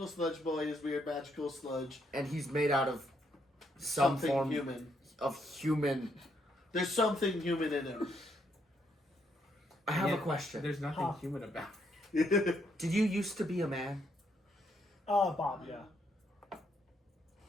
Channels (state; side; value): normal; both; correlation 0.74